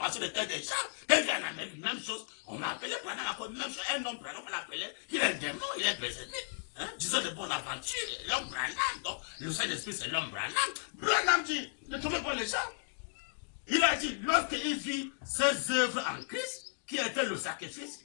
de cœur des gens. Quand il vient en Amérique, même chose. On m'a appelé Branham encore même chose. Un homme Branham, on l'appelait, qu'il est un démon, il est Bézébul. Hein? Disons de bonne aventure, l'homme Branham. Donc, le Saint-Esprit c'est l'homme Branham. Branham dit, ne trouvez pas les gens. Il a dit, lorsqu'il vit ses œuvres en Christ, qui était le sacrifice,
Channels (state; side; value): silent; right; digital silence